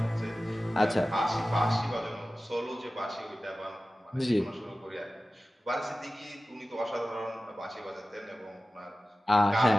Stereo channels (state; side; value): normal; both; correlation 0.96